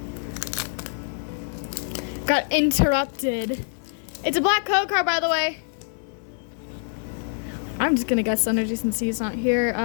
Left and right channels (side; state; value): right; silent; 62 dB below the other